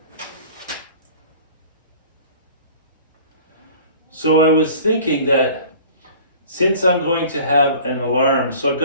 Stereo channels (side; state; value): both; inverted; correlation -0.46